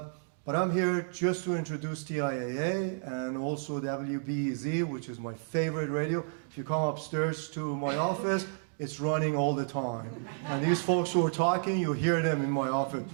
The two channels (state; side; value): silent; left; digital silence